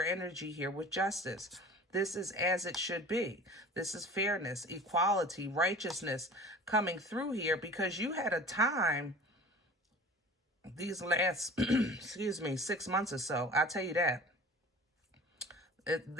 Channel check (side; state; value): both; normal; correlation 0.41